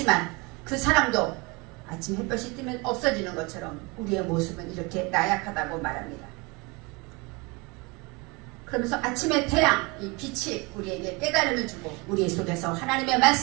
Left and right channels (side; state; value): left; quieter; 27.3 dB